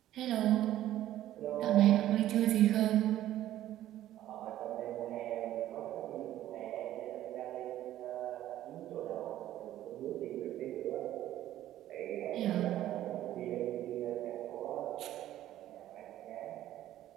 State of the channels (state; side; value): quieter; left; 13.2 dB